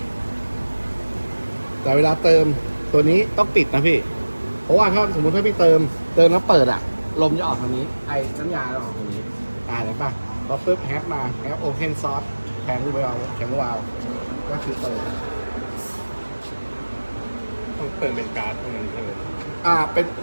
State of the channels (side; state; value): both; inverted; correlation -1.00